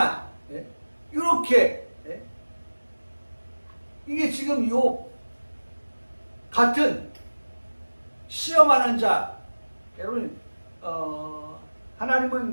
네? 이렇게. 네? 이게 지금 요 같은 시험하는 자, 여러분,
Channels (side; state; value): both; inverted; correlation -1.00